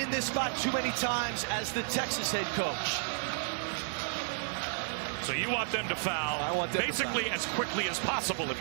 this spot too many times as the Texas head coach. So you want them to foul, I want them basically to foul as quickly as possible if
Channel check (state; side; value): silent; left; digital silence